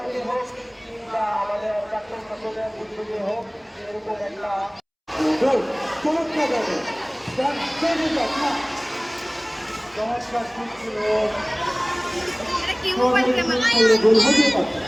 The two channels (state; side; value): identical; both; correlation 1.00